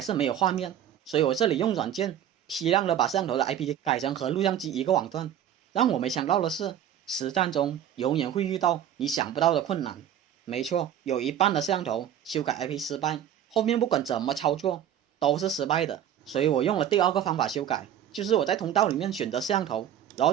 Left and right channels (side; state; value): left; quieter; 10.3 dB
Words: 是没有画面。所以我这里用软件批量的把摄像头的 IP 改成和录像机一个网段。让我没想到的是，实战中永远会遇到你想不到的困难。没错，有一半的摄像头修改 IP 失败，后面不管怎么操作都是失败的。所以我用了第2个方法修改，就是我在通道里面选择摄像头，然后